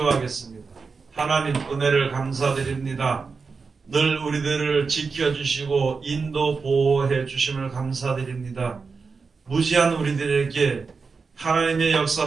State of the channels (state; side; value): quieter; left; 4.8 dB